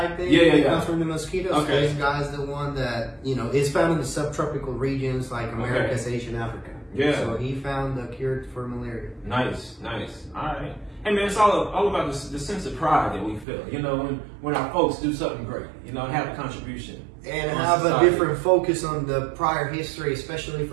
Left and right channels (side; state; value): left; drops out; at 13.5 s